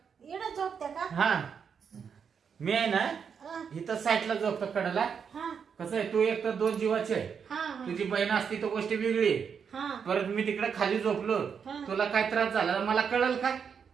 इकडं झोपत्या का हा मी आहे ना अ, इथं साईडला झोपतो कडेला हा कसं आहे तू एक तर 2 जीवाची आहे हा हा, तुझी बहीण असती तर गोष्ट वेगळी आहे. हा परत मी तिकडे खाली झोपलो हा. तुला काय त्रास झाला तर मला कळल का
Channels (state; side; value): quieter; left; 6.8 dB